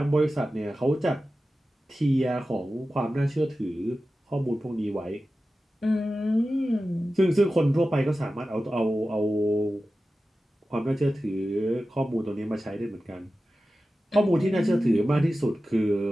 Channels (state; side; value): normal; both; correlation 0.94